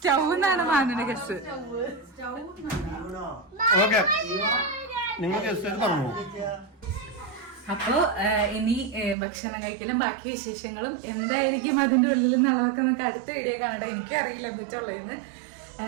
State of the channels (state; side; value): drops out; left; at 9.2 s